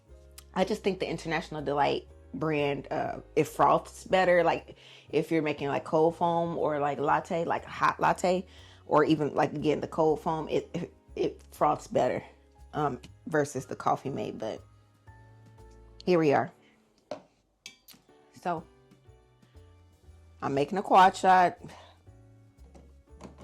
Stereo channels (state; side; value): identical; both; correlation 1.00